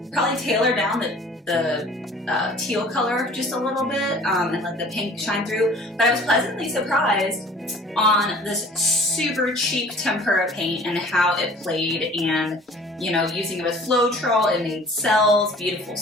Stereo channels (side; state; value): both; normal; correlation 0.49